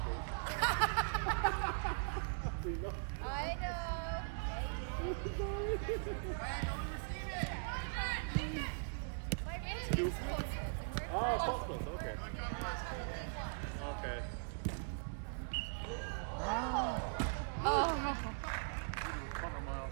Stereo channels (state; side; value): silent; left; digital silence